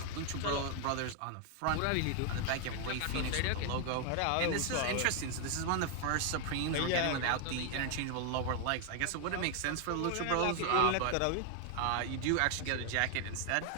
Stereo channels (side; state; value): both; different; correlation 0.00